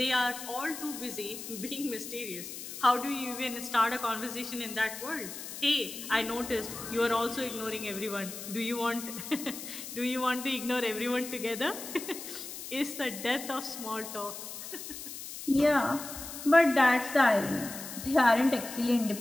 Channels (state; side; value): noise; left; hiss, 10 dB below the sound